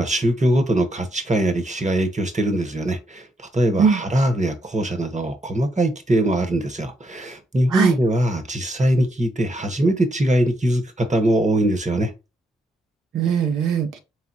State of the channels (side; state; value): both; normal; correlation 0.77